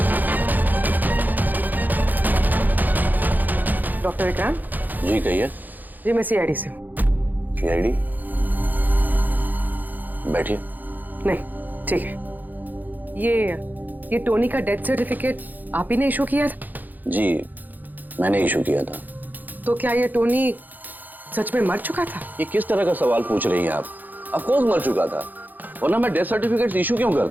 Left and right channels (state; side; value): late; left; 0.085 ms